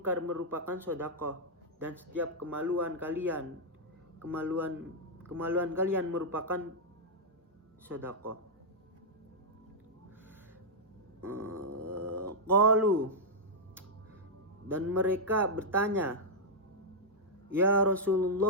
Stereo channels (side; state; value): both; normal; correlation -0.05